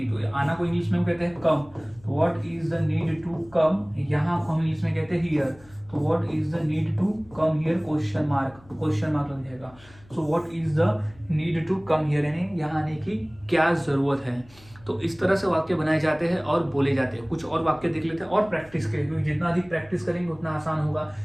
तो आना को इंग्लिश में हम कहते हैं कम। तो what is the need to come, यहाँ को हम इंग्लिश में कहते हैं हियर। तो what is the need to come here, question mark लग जाएगा। So what is the need to come here यानी यहाँ आने की क्या जरूरत है। तो इस तरह से वाक्य बनाए जाते हैं और बोले जाते हैं। कुछ और वाक्य देख लेते हैं और प्रैक्टिस करें, क्योंकि जितना अधिक प्रैक्टिस करेंगे उतना आसान होगा।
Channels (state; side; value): noise; left; hum, 25 dB below the sound